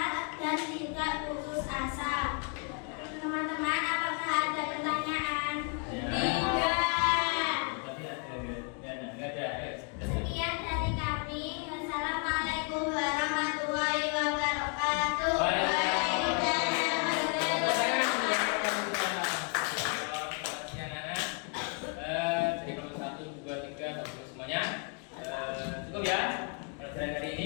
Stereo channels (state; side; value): quieter; right; 38.2 dB